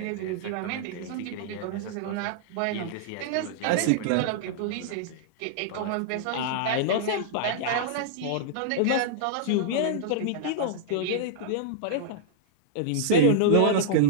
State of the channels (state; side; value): different; both; correlation -0.02